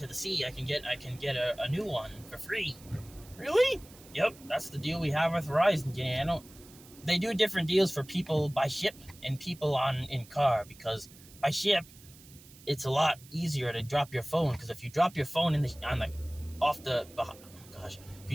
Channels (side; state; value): right; noise; hiss, 22 dB below the sound